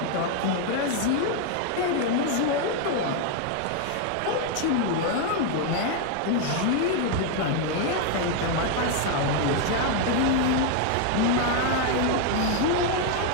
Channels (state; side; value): different; both; correlation 0.01